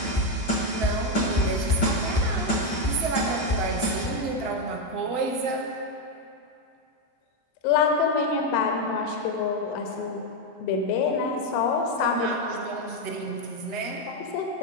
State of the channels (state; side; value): late; right; 7.9 ms